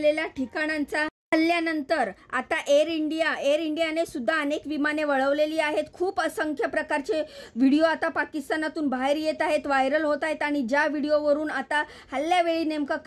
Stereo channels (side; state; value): both; identical; correlation 1.00